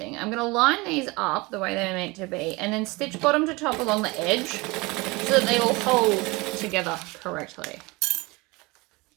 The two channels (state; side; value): quieter; left; 24.2 dB